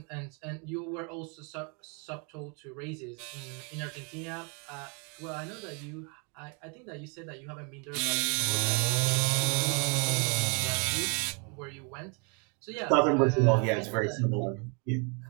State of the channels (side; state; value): left; quieter; 35.3 dB